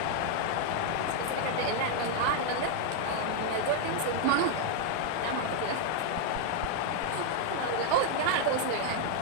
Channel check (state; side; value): different; both; correlation 0.00